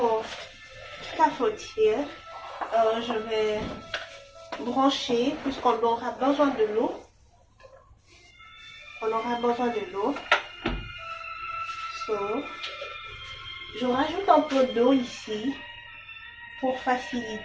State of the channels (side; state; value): both; identical; correlation 1.00